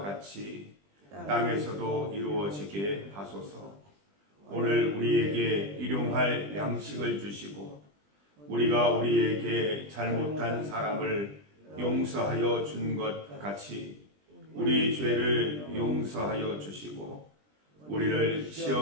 땅에서도 이루어지게 하소서. 오늘 우리에게 일용할 양식을 주시고 우리가 우리에게 잘못한 사람을 용서하여 준 것 같이 우리 죄를 용서하여 주시고 우리를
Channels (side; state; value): left; late; 20 ms